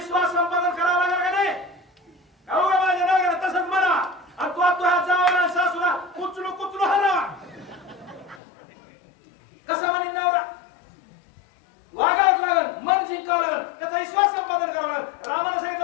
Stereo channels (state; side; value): drops out; right; at 8.4 s